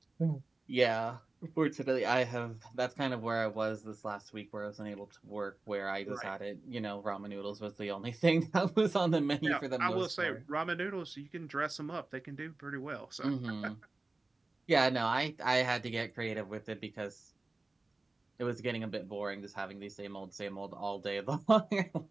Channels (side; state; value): left; quieter; 3.2 dB